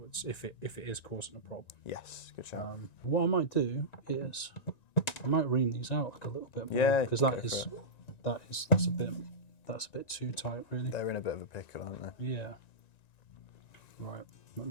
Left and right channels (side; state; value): right; late; 1.9 ms